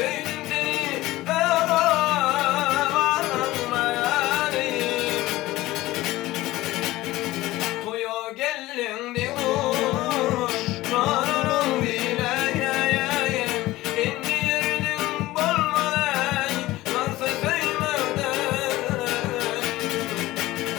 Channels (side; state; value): right; quieter; 17.6 dB